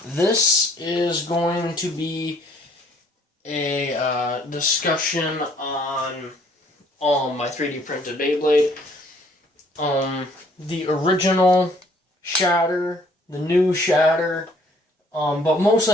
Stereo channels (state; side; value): normal; both; correlation 0.61